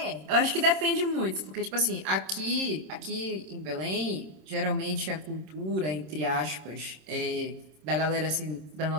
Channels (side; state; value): left; late; 26 ms